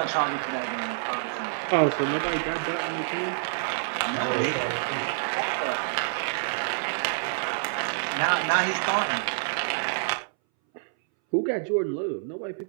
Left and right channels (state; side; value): silent; left; 60 dB below the other